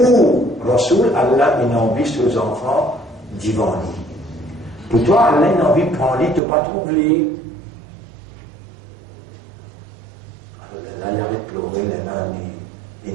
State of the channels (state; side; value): drops out; left; at 6.4 s